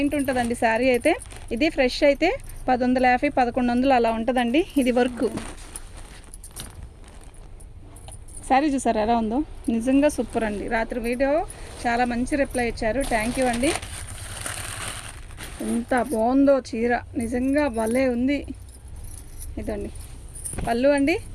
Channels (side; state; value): both; identical; correlation 1.00